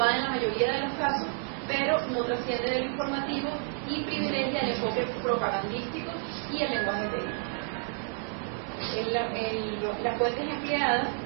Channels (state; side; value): silent; left; 57 dB below the other